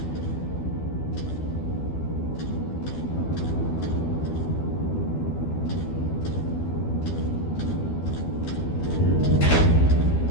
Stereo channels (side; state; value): right; late; 12 ms